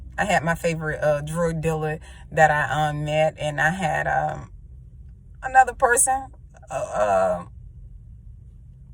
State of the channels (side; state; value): both; identical; correlation 1.00